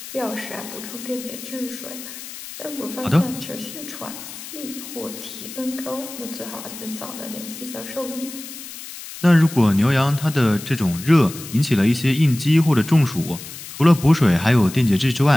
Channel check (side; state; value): left; noise; hiss, 13 dB below the sound